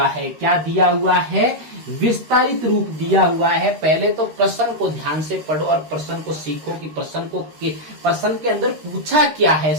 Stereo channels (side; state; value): left; late; 13 ms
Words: है। क्या दिया हुआ है? विस्तारित रूप दिया हुआ है। पहले तो प्रश्न को ध्यान से पढ़ो और प्रश्न को सीखो कि प्रश्न के अंदर पूछा क्या है।